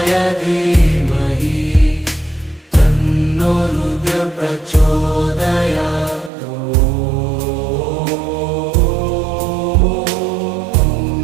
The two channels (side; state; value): left; drops out; at 6.3 s